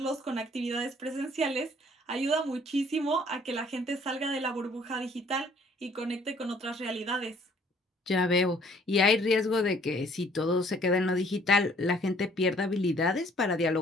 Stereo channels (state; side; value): normal; both; correlation 0.59